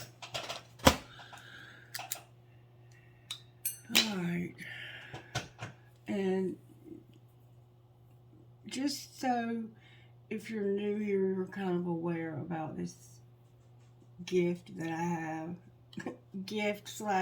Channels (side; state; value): both; identical; correlation 1.00